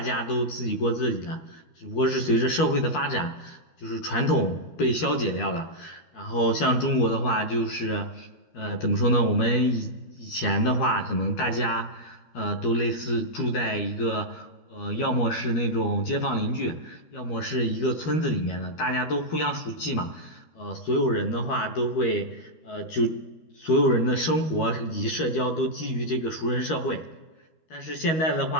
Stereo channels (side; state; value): right; late; 13 ms